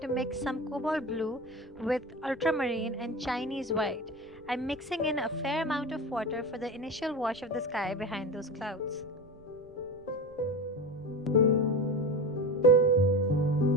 mix some cobalt blue with ultramarine and Chinese white. I'm mixing in a fair amount of water for the initial wash of the sky behind those clouds.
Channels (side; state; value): right; noise; rumble, 25 dB below the sound